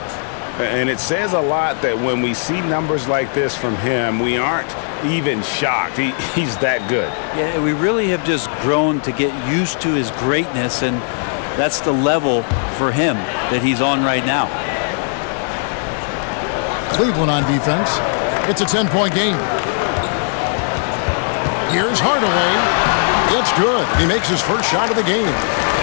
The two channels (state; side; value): silent; right; 67 dB below the other